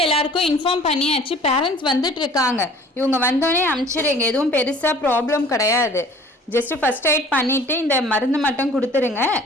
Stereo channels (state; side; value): normal; both; correlation 0.49